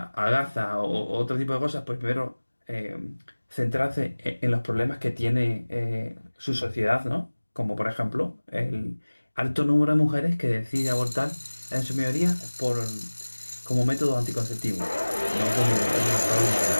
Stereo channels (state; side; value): inverted; both; correlation -1.00